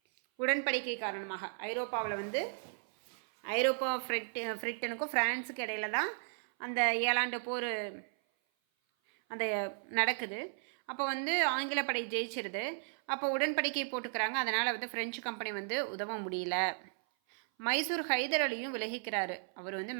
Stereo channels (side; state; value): left; silent; 54 dB below the other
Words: உடன்படிக்கை காரணமாக ஐரோப்பாவில் வந்து ஐரோப்பா பிரிட்டனுக்கும் ஃப்ரான்ஸுக்கு இடையில தான் அந்த 7 ஆண்டு போர் அந்த நடக்குது. அப்போ வந்து ஆங்கில படை ஜெயிச்சிருது. அப்போ உடன்படிக்கை போட்டுக்கிறாங்க. அதனால் வந்து பிரெஞ்சு கம்பெனி வந்து உதவ முடியல. மைசூர் ஹைதர் அலியும் விலகிக்கிறாரு. அவர் வந்து